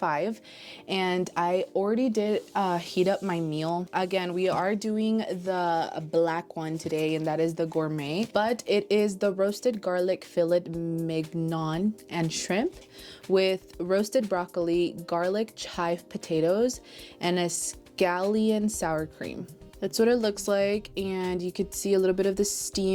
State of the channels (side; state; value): both; identical; correlation 1.00